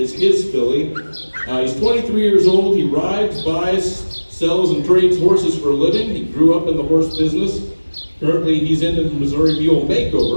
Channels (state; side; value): inverted; both; correlation -1.00